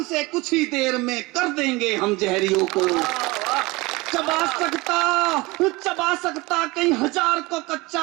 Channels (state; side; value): quieter; left; 23.0 dB